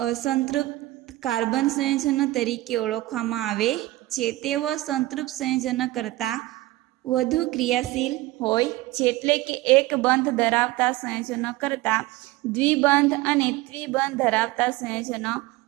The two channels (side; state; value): left; quieter; 18.1 dB